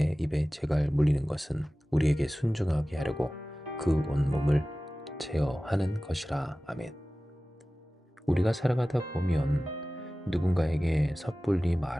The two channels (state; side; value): normal; both; correlation 0.97